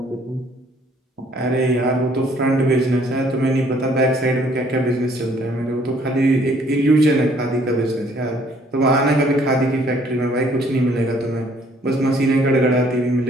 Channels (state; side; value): normal; both; correlation 0.62